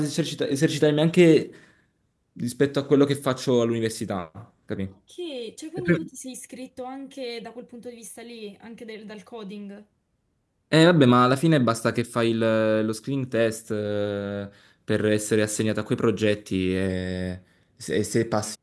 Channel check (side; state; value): both; identical; correlation 1.00